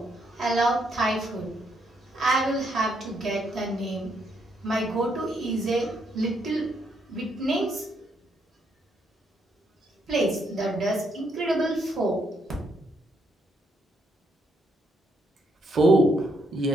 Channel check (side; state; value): both; normal; correlation 0.75